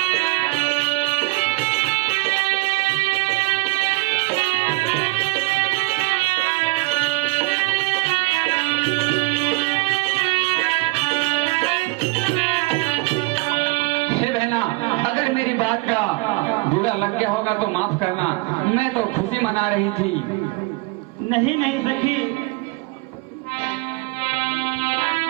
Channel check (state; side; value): quieter; left; 24.0 dB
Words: हे बहना, अगर मेरी बात का बुरा लग गया होगा तो माफ करना, मैं तो खुशी मना रही थी। नहीं नहीं सखी,